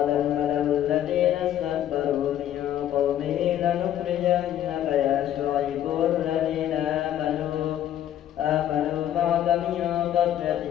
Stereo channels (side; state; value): right; quieter; 11.4 dB